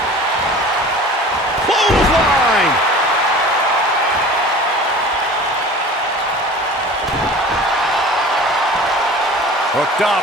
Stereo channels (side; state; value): both; normal; correlation 0.41